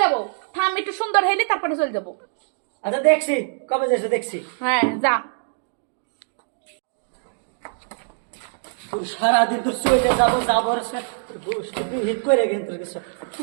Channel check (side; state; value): left; silent; digital silence